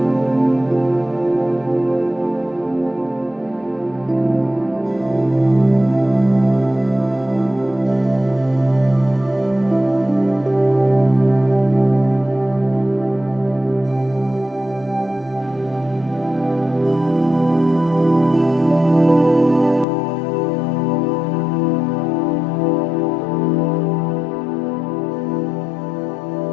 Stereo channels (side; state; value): right; drops out; at 19.9 s